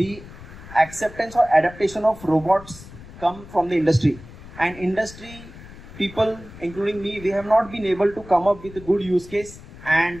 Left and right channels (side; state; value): left; noise; rumble, 17 dB below the sound